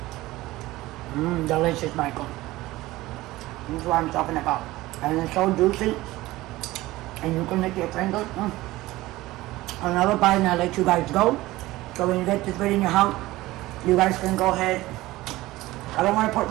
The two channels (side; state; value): left; quieter; 18.1 dB